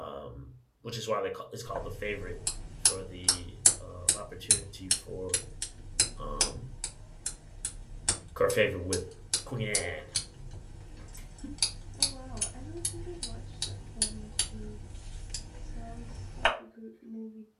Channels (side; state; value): both; identical; correlation 1.00